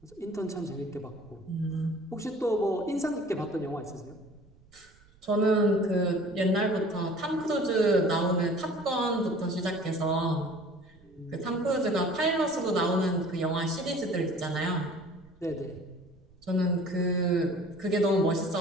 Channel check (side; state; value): right; noise; rumble, 28 dB below the sound